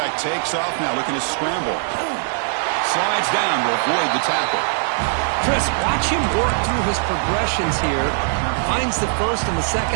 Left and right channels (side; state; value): left; silent; 65 dB below the other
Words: takes off now, looking to scramble. Slides down to avoid the tackle. Chris, watch him work through his progressions here. Finds the first and the